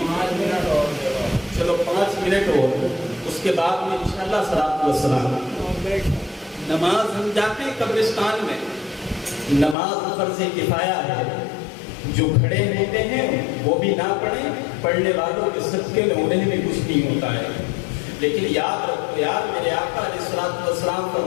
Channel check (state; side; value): drops out; right; at 9.8 s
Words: منٹ اور چلو 5 منٹ اور اس کے بعد میں انشاءاللہ صلاۃ و سلام۔ نماز ہم جاتے ہیں قبرستان میں، نماز فرض کفایہ ہے، جو کھڑے ہوتے ہیں وہ بھی نہ پڑھیں، پڑھنے والوں کے صدقے میں انہیں بھی کچھ نہیں ہوتا ہے۔ لیکن یاد رکھو یار، میرے آقا علیہ الصلوۃ والسلام